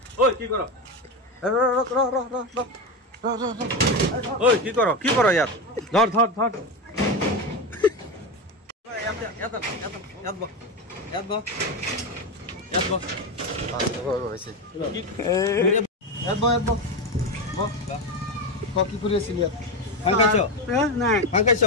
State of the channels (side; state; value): both; normal; correlation 0.15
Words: ঐ কি কৰ ঐ কি কৰ ইয়াত ধৰ ধৰ ধৰ কি কৰি আছিল ইয়াত